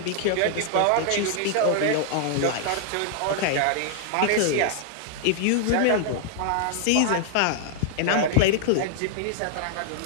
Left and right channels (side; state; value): both; different; correlation -0.01